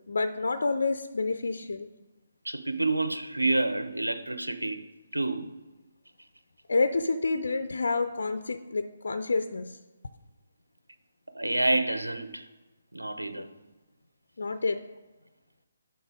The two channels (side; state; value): both; inverted; correlation -0.91